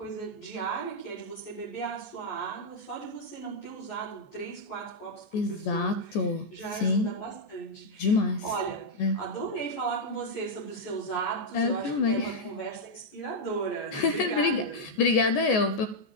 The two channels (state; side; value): late; right; 14 ms